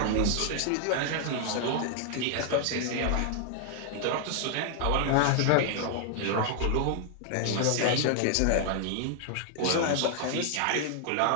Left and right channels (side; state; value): both; different; correlation 0.00